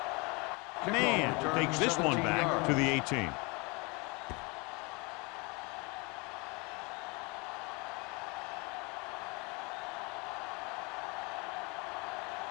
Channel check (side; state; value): right; quieter; 28.5 dB